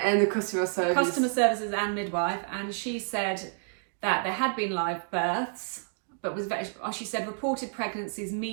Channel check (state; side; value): silent; left; 58 dB below the other